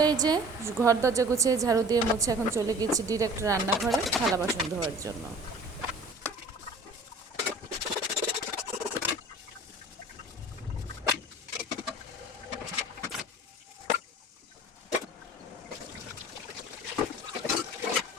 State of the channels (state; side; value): normal; both; correlation 0.45